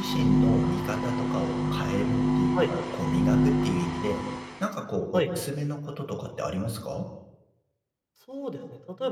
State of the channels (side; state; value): both; identical; correlation 1.00